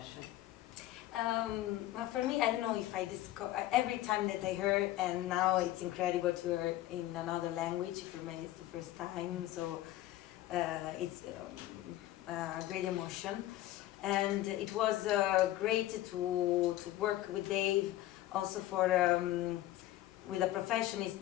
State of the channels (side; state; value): right; quieter; 15.0 dB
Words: Well, for me, I don't know if I discover every time that I heard, and now it's incredible to hear in another language. For me, it's the first time, so it's a great emotion, and it was great to work with Dave. Also for with a professionist